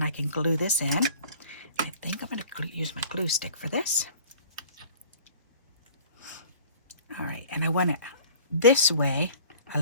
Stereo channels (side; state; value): both; inverted; correlation -0.47